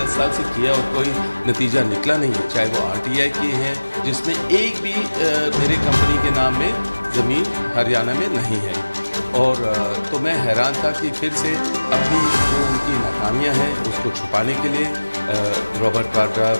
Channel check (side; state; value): both; inverted; correlation -1.00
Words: साल से किया और कोई नतीजा निकला नहीं है, चाहे वो आरटीआई किए हैं जिसमें एक भी मेरे कंपनी के नाम में ज़मीन हरियाणा में नहीं है। और तो मैं हैरान था कि फिर से अपनी जो उनकी नाकामियां हैं उसको छुपाने के लिए रॉबर्ट वाड्रा,